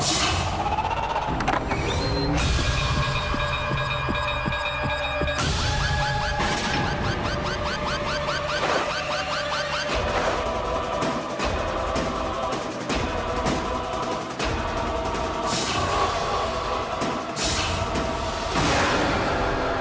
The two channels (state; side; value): identical; both; correlation 1.00